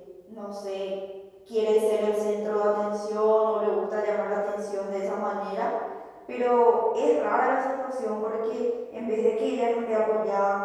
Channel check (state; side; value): identical; both; correlation 1.00